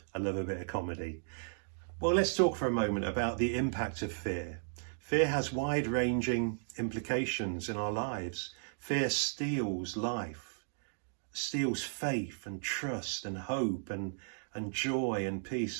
I love a bit of comedy. Well, let's talk for a moment about the impact of fear. Fear has wide-ranging implications in our lives. Fear steals life, steals faith and trust and hope and joy and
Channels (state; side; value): silent; left; digital silence